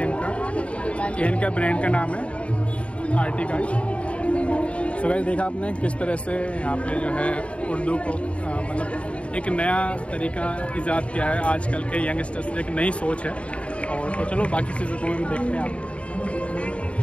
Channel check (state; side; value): late; right; 0.062 ms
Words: इनका ब्रांड का नाम है आर्टिगाइड। तो वैसे देखा आपने किस तरह से यहाँ पे जो है उर्दू को मतलब एक नया तरीका ईजाद किया है आजकल के यंगस्टर्स, एक नई सोच है। और तो चलो बाकी चीज़ों को भी देखते हैं आप